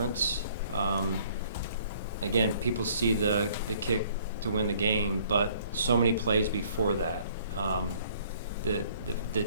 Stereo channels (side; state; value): both; inverted; correlation -0.59